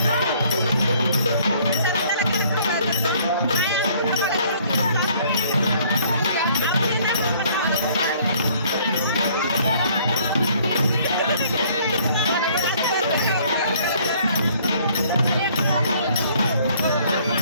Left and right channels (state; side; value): inverted; both; correlation -0.60